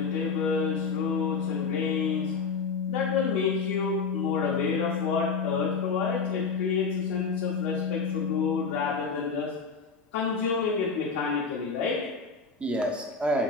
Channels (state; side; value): quieter; right; 5.0 dB